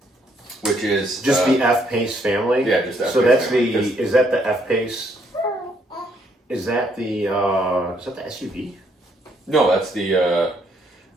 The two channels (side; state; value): both; normal; correlation 0.70